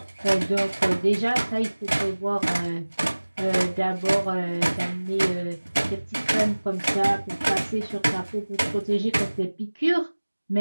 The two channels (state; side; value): inverted; both; correlation -1.00